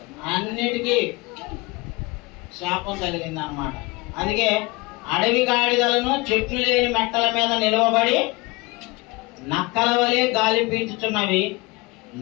అన్నిటికీ శాపం కలిగింది అన్నమాట. అందుకే అడవి గాడిదలను చెట్లు లేని మెట్టల మీద నిలవబడి నక్కల వలె గాలి పీల్చుచున్నవి,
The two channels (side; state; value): right; quieter; 23.8 dB